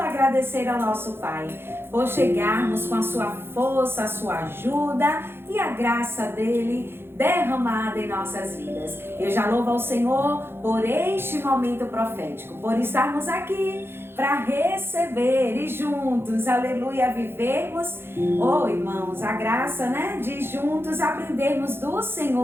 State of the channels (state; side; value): late; left; 0.11 ms